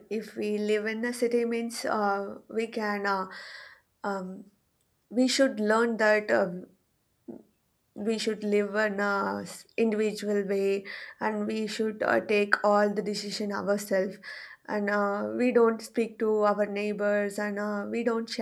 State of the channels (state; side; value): identical; both; correlation 1.00